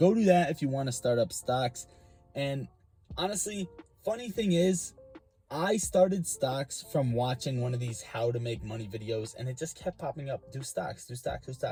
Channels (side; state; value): both; identical; correlation 1.00